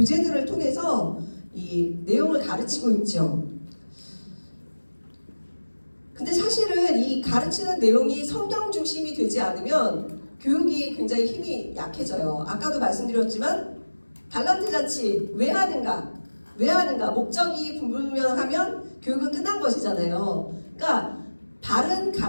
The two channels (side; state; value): both; inverted; correlation -1.00